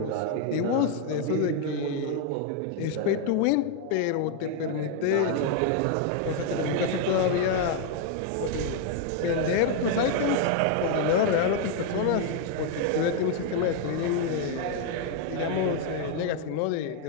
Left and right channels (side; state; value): both; different; correlation 0.00